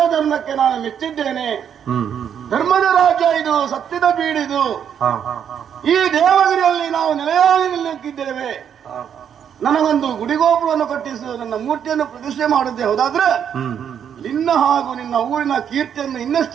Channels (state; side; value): quieter; left; 8.5 dB